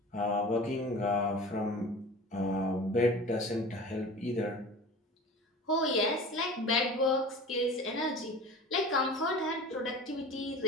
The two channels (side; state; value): both; normal; correlation 0.38